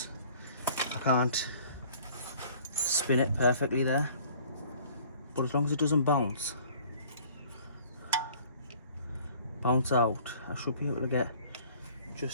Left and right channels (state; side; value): inverted; both; correlation -0.52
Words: I can't spin it perfectly there, but as long as it doesn't bounce out, I should be able to get